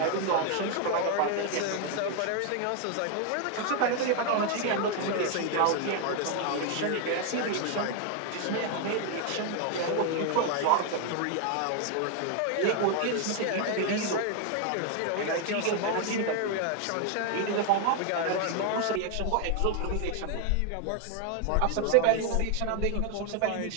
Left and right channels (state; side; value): different; both; correlation 0.01